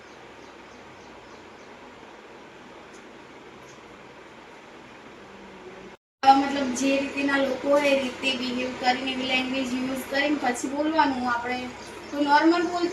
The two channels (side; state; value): both; identical; correlation 1.00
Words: મતલબ જે રીતના લોકો હોય એ રીતે બિહેવ કરીને એવી લેંગ્વેજ યુઝ કરીને પછી બોલવાનું. આપણે કોઈ નોર્મલ